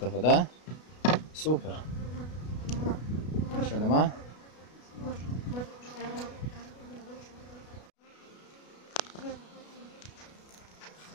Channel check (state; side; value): late; right; 33 ms